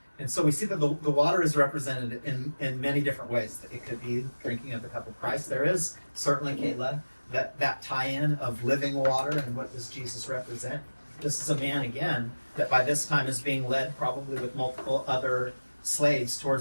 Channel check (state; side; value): inverted; both; correlation -1.00